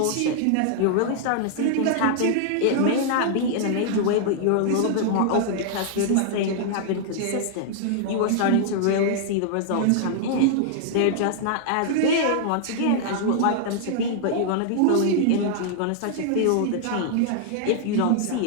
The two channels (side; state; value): both; different; correlation -0.01